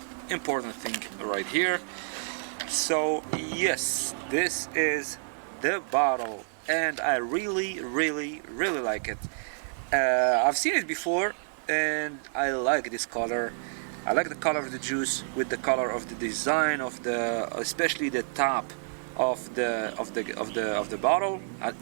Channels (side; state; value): left; silent; 59 dB below the other